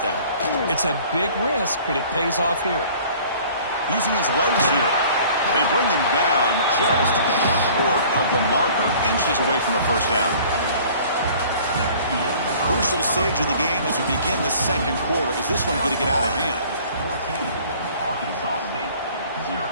down. It's a big risk, but it pays off here. Using his legs here. They bring him down just short of the marker, inches away from a first down. Crucial stage of the game as we begin the 2nd quarter. Is this one going to get out of hand? 14, Arkansas State,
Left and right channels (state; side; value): inverted; both; correlation -0.50